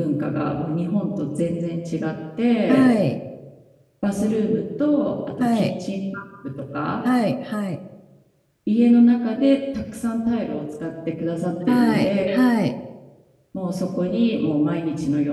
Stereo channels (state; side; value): identical; both; correlation 1.00